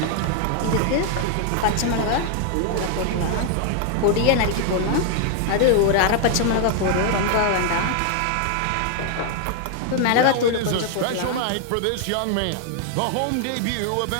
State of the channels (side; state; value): both; different; correlation 0.00